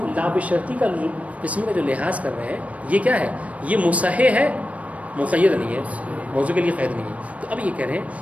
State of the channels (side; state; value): left; late; 0.066 ms